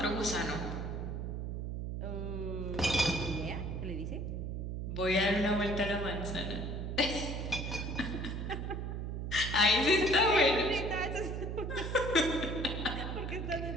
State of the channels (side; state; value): right; noise; hum, 4 dB below the sound